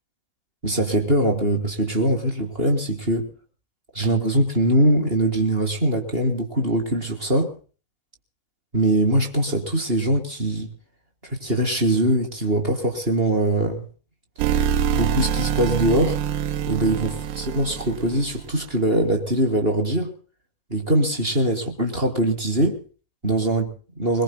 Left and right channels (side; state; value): left; late; 2.8 ms